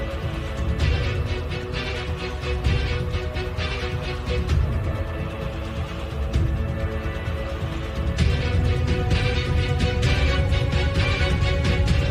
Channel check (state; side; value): identical; both; correlation 1.00